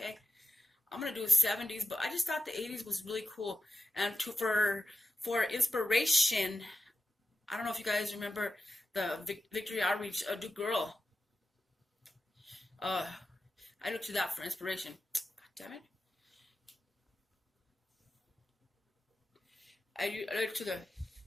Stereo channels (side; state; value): both; normal; correlation 0.93